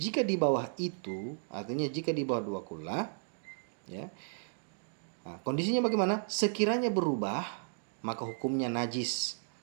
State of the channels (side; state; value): left; silent; digital silence